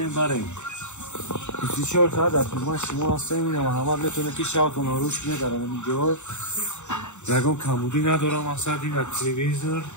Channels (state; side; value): late; right; 0.84 ms